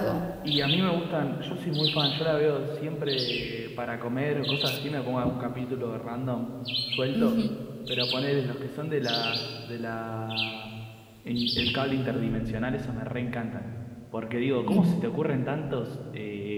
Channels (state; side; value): identical; both; correlation 1.00